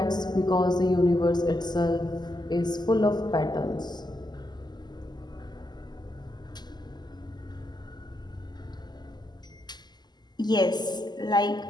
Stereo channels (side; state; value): right; late; 0.21 ms